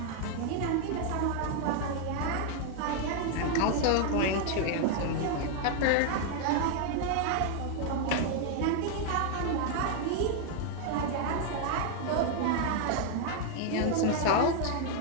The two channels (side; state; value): both; different; correlation 0.00